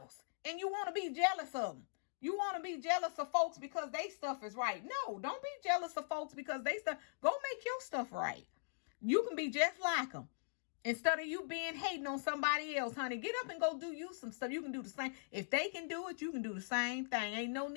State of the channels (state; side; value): silent; right; digital silence